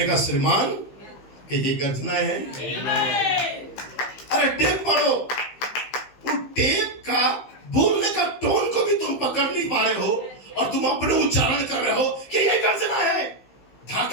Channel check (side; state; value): right; late; 15 ms